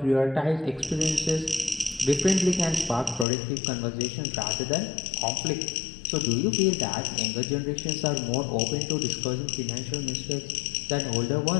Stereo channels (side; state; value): right; drops out; at 3.2 s